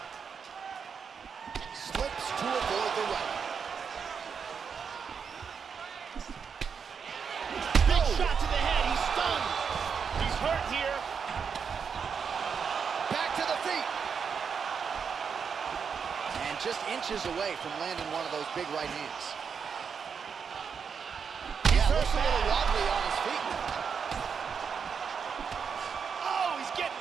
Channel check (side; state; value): left; quieter; 6.4 dB